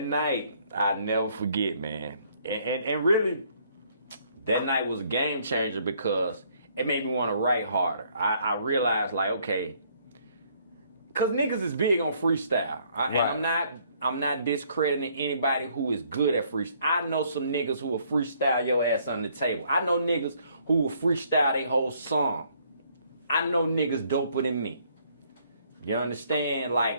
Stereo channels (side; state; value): both; inverted; correlation -0.65